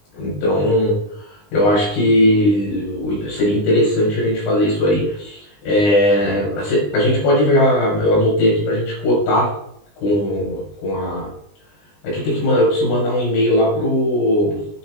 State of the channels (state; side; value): late; right; 20 ms